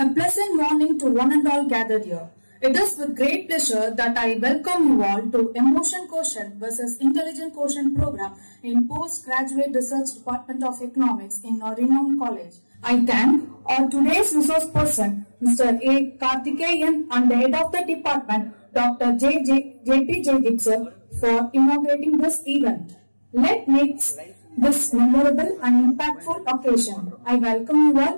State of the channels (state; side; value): inverted; both; correlation -1.00